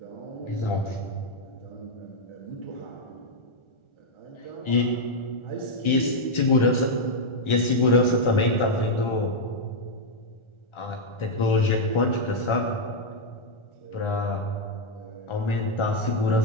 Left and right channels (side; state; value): right; late; 1.4 ms